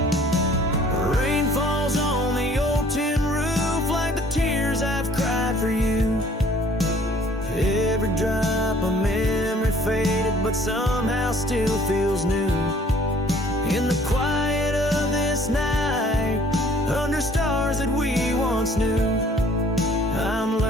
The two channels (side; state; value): both; normal; correlation 0.56